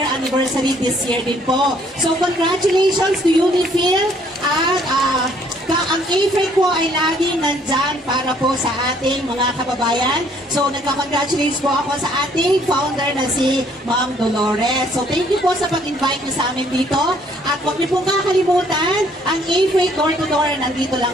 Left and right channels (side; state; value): both; normal; correlation 0.63